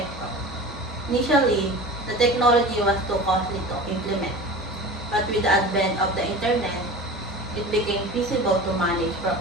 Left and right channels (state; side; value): normal; both; correlation 0.35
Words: Initially, the technology was too costly to implement, but with the advent of the internet, it became feasible to manage